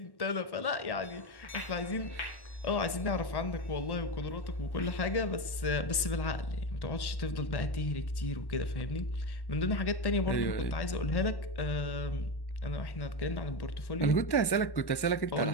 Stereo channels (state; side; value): late; right; 1.1 ms